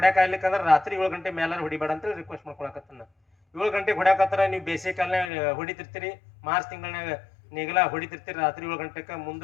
ಆಗ್ಲಿಕ್ಕಂದ್ರೆ ರಾತ್ರಿ 7 ಗಂಟೆ ಮೇಲೆ ಹೊಡಿಬೇಡ ಅಂತ ರಿಕ್ವೆಸ್ಟ್ ಮಾಡ್ಕೊಳಕತ್ತನ್ನ. 7 ಗಂಟೆಗೆ ಹೊಡ್ಯಾಕತ್ತಾರ, ನೀವು ಬೇಸಿಗೆ ಕಾಲನಾಗ ಹೊಡಿತಿರ್ತೀರಿ, ಮಾರ್ಚ್ ತಿಂಗಳಾಗ ನೇಗಿಲ ಹೊಡಿತಿರ್ತೀರಿ, ರಾತ್ರಿ 7 ಗಂಟೆಗೆ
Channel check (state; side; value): drops out; right; at 5.3 s